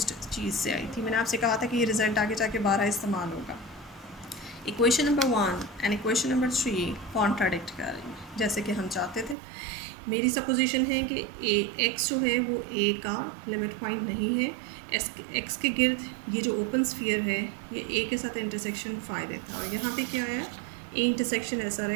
चीज़ से आई थी। मैंने आपसे कहा था कि ये रिज़ल्ट आगे जाके 12 इस्तेमाल होगा। Equation number 1 and equation number 3 contradict कर रही हैं जैसे कि हम चाहते थे। मेरी सपोजिशन है कि ए एक्स जो है वो ए का लिमिट पॉइंट नहीं है, एक्स के गिर्द ये जो ओपन स्फीयर है ये ए के साथ इंटरसेक्शन फ़ाई देता है, और यहाँ पे क्या आया, A intersection S R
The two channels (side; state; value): left; drops out; at 9.3 s